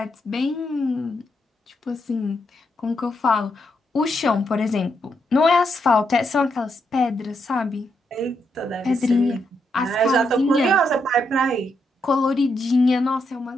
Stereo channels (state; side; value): normal; both; correlation 0.80